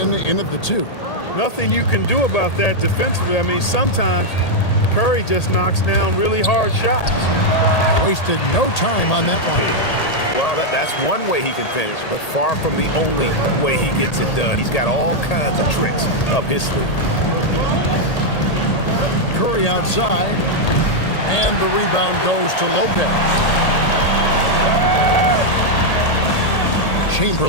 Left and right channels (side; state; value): right; late; 1.8 ms